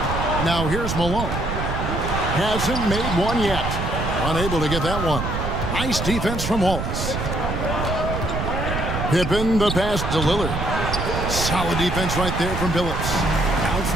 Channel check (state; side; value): noise; right; rumble, 3 dB below the sound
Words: Now here's Malone. Hasn't made one yet. Unable to get that one. Nice defense from Wallace. Pippen the pass to Lillard. Solid defense right there from Billups.